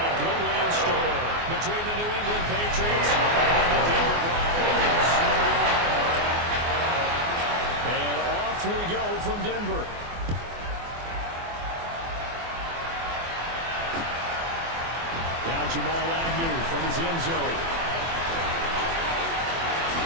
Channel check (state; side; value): late; left; 24 ms